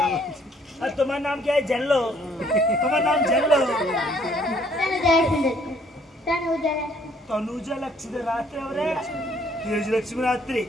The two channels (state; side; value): normal; both; correlation 0.63